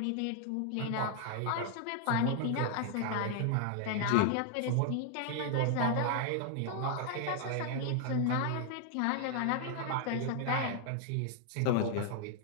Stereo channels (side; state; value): both; different; correlation 0.00